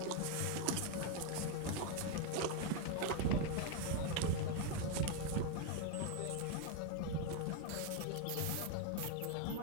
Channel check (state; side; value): different; both; correlation 0.01